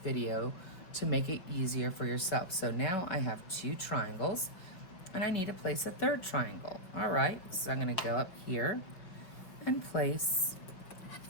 to make it easier for yourself. So now I have 2 triangles and I need to place a 3rd triangle. All right, so I'm gonna go up here and place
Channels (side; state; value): right; late; 5.4 ms